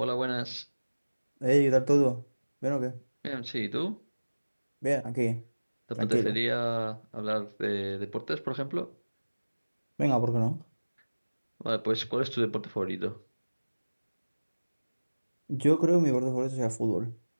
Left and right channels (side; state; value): both; inverted; correlation -1.00